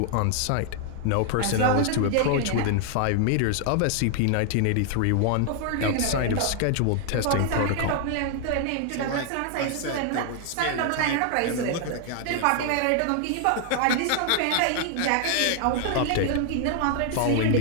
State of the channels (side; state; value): both; different; correlation 0.00